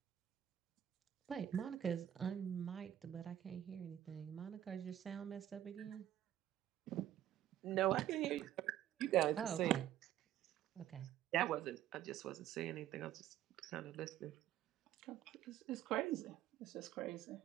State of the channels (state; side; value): quieter; left; 11.9 dB